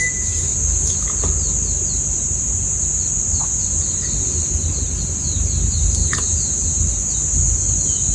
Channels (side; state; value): both; identical; correlation 1.00